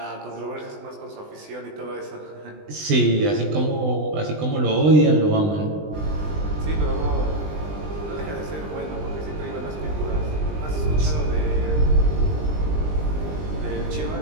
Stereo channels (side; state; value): left; late; 20 ms